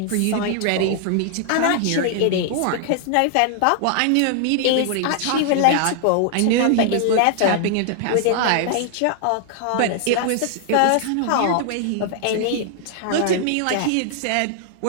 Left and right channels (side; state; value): both; different; correlation 0.00